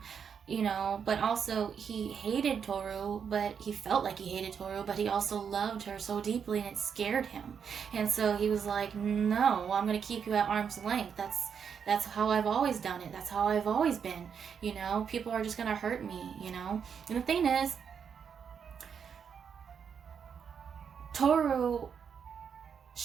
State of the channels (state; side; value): quieter; left; 7.1 dB